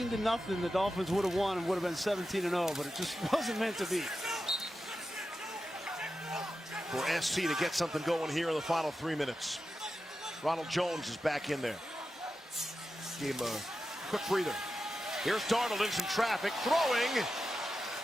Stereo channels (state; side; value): normal; both; correlation 0.91